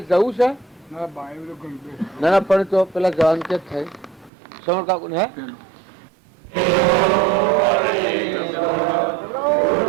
જવું છે ના ના પણ તો પેલા જવાનું ક્યાં થાય શ્રવણ કાકુ ને હે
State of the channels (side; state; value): left; drops out; at 4.3 s